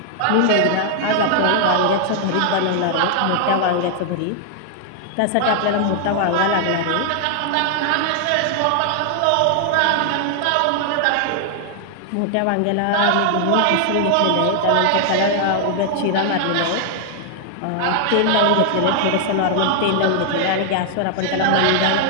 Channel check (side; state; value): both; different; correlation 0.00